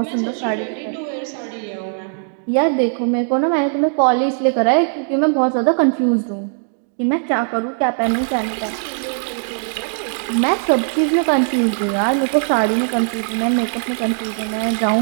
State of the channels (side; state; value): left; silent; digital silence